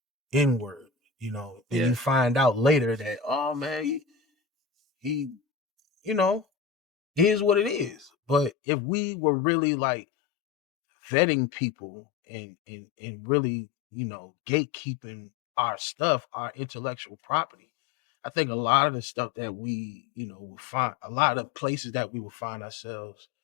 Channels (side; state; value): right; drops out; at 8.5 s